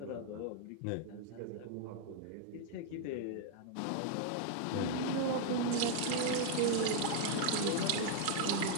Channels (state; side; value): different; both; correlation 0.00